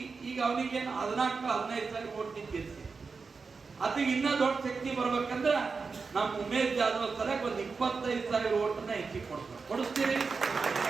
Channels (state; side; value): quieter; left; 4.7 dB